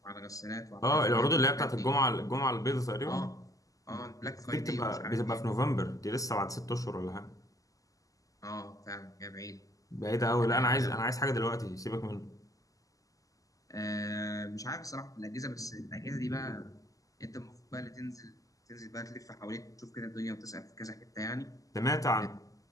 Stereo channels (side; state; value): right; late; 0.17 ms